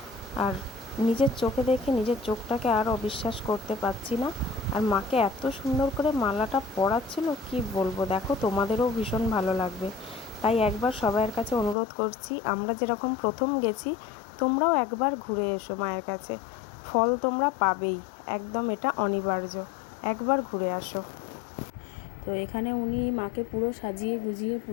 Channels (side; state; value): right; drops out; at 11.8 s